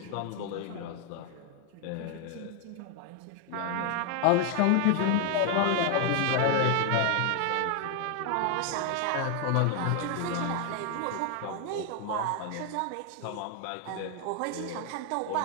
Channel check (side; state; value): both; different; correlation 0.00